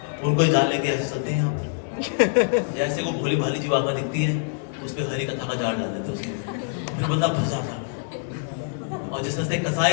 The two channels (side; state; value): right; silent; digital silence